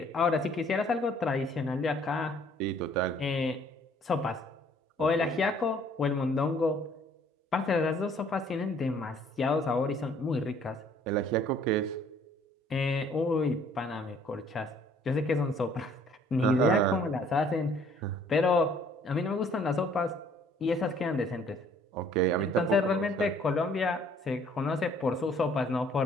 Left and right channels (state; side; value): normal; both; correlation 0.59